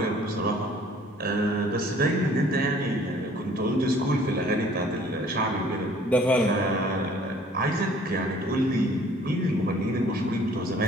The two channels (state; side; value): normal; both; correlation 0.55